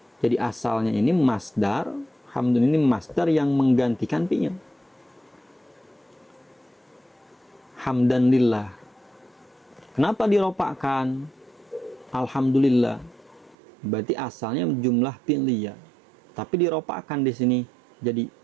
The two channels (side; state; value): left; drops out; at 13.6 s